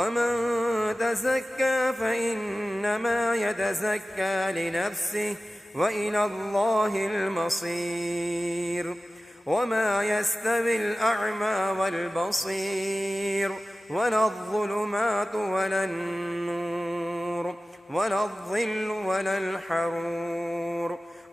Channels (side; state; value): both; normal; correlation 0.95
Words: تزكى فإنما يتزكى لنفسه وإلى الله المصير وما يستوي الأعمى والبصير ولا الظلمات ولا النور ولا الظل ولا الحرور